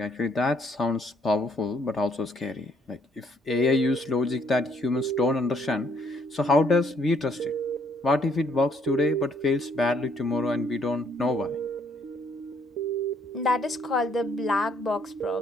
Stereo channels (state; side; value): normal; both; correlation 0.67